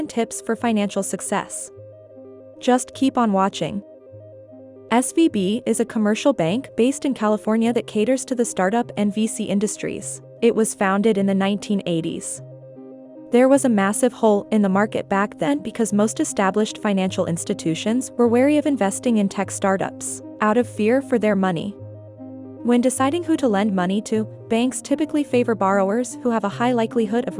tips for financial success. Just keep on watching. SVB is a commercial bank based in California that caters to the startup and VC industries. It was founded in the 1980s. There was a massive hole in the market back then because most established financial institutions were wary of investing in tech startups, out of fear for their money. When deciding who to lend money to, banks typically favor borrowers who have a high likelihood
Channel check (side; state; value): both; identical; correlation 1.00